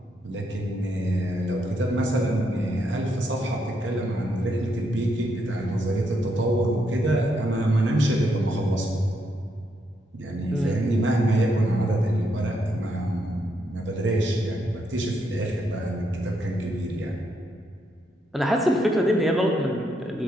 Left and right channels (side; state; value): both; normal; correlation 0.78